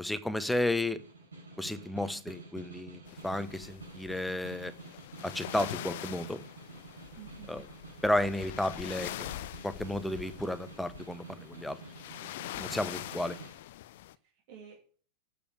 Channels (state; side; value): normal; both; correlation 0.80